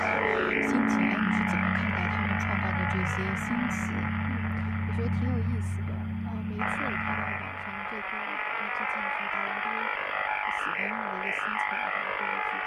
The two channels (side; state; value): both; identical; correlation 1.00